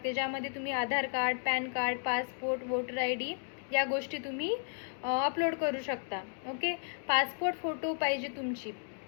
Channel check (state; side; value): silent; right; 55 dB below the other